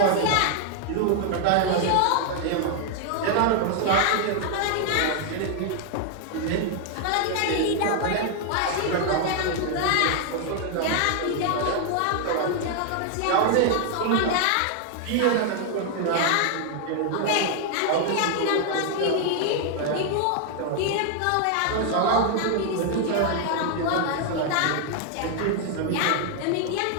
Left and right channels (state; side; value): different; both; correlation 0.00